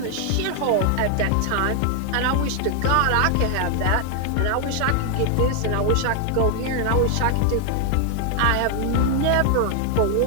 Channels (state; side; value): different; both; correlation 0.00